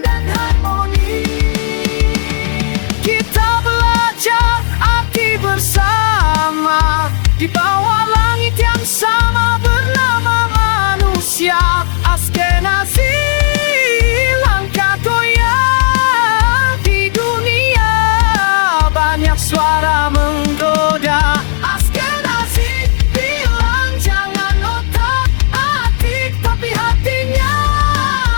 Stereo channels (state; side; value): silent; right; digital silence